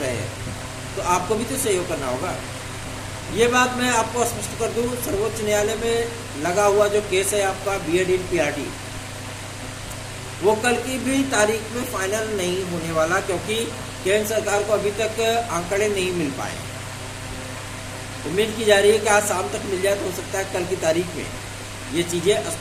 हैं तो आपको भी तो सहयोग करना होगा। ये बात मैं आपको स्पष्ट कर दूं, सर्वोच्च न्यायालय में लगा हुआ जो केस है आपका बीएड इन पीआरटी, वो कल की भी तारीख में फाइनल नहीं होने वाला, क्योंकि केंद्र सरकार को अभी तक आंकड़े नहीं मिल पाए। उम्मीद की जा रही है कि आज शाम तक मिल जाए, तो हो सकता है कल की तारीख में ये चीज़ें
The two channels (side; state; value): both; identical; correlation 1.00